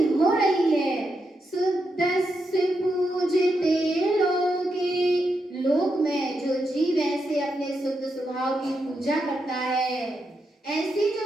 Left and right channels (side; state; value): both; normal; correlation 0.84